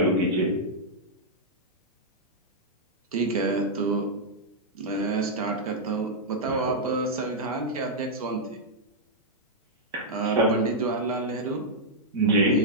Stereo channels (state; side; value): normal; both; correlation -0.07